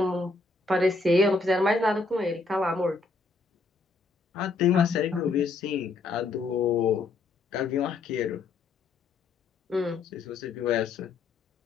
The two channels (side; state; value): right; quieter; 3.8 dB